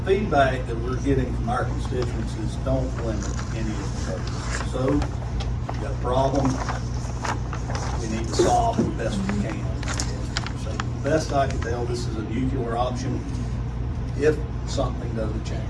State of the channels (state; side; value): identical; both; correlation 1.00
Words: feedback that we're getting from our constituents is don't limit any of the programs. So, you got a problem, we need to solve it the best we can. So the best I can tell, this is a nuclear option if something doesn't change.